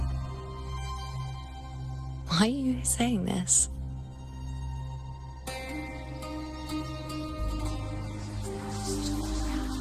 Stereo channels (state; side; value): identical; both; correlation 1.00